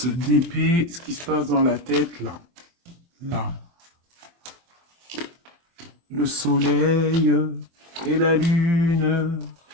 d'épée, ce qui se passe dans la tête, là. Là. Le soleil et la lune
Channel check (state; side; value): late; left; 23 ms